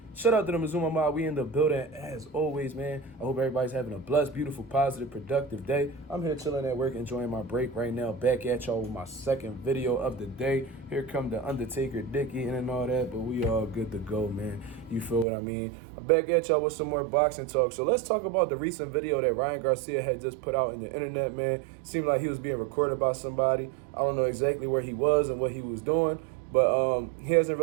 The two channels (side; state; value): left; drops out; at 15.2 s